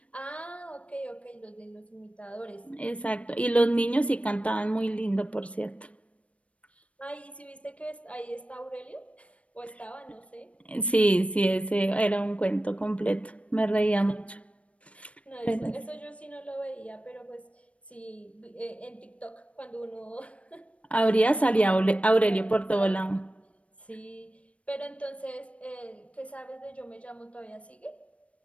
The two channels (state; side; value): late; right; 0.063 ms